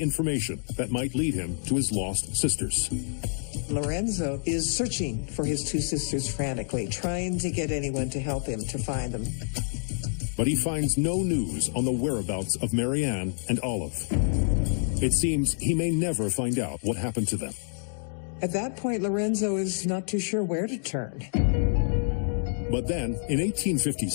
information that might lead him to his lost sisters. Lorenzo is searching for his 2 sisters frantically, trying to get anyone to help him to find them. But he finds no news on the whereabouts of Marianne and Olive. It seems he may never find out what happened to them. At that point, Lorenzo is not too sure where to turn. But then, in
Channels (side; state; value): right; silent; 60 dB below the other